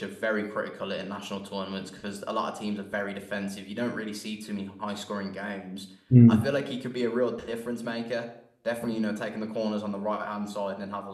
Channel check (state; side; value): identical; both; correlation 1.00